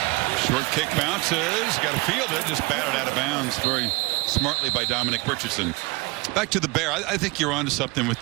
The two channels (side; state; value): left; quieter; 24.7 dB